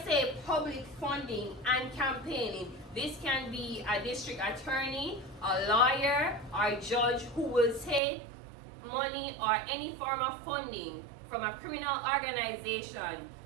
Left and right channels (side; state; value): left; drops out; at 8.0 s